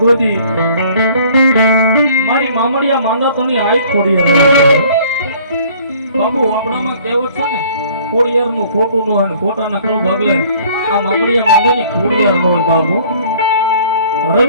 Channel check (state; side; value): inverted; both; correlation -0.54